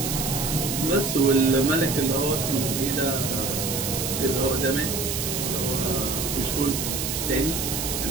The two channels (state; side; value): noise; right; hiss, 2 dB below the sound